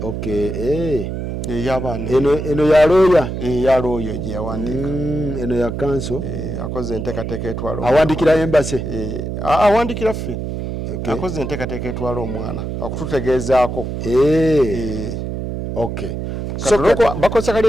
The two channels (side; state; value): right; noise; hum, 5 dB below the sound